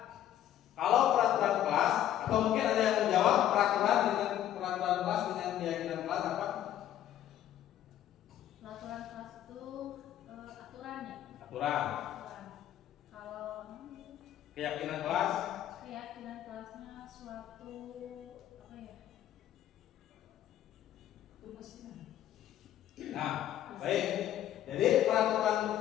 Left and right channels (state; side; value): quieter; right; 11.7 dB